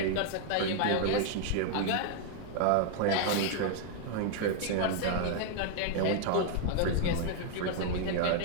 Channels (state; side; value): different; both; correlation 0.00